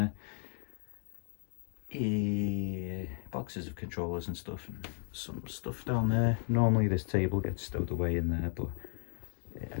Boxes of controllers and stuff, and some stuff down there. Normally this table gets stowed away in there, but I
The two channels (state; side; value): silent; right; 55 dB below the other